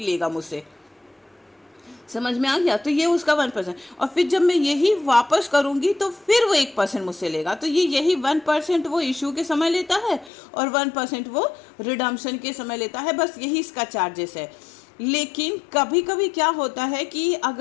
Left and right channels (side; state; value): right; drops out; at 10.3 s